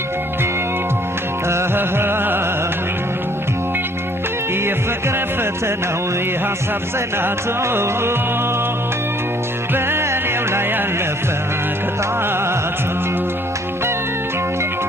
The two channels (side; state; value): both; normal; correlation 0.61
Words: የፍቅር ፈተናው የሐሳብ ጽናቱ በእኔው ላይ ያለፈ ቅጣቱ